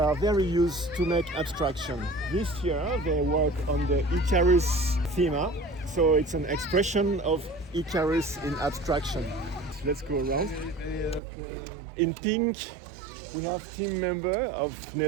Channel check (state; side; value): drops out; left; at 11.2 s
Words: very used to make abstraction. This year they work on the Icarus theme, so it's an expression of Icarus in abstraction. Let's go around. In pink, we have team member of